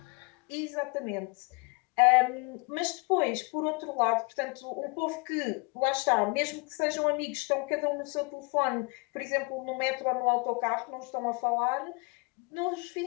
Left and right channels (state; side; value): quieter; right; 30.3 dB